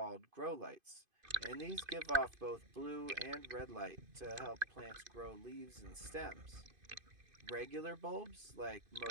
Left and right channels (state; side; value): late; left; 2.5 ms